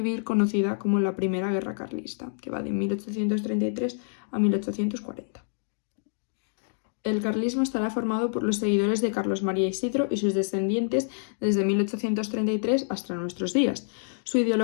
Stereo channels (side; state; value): right; silent; digital silence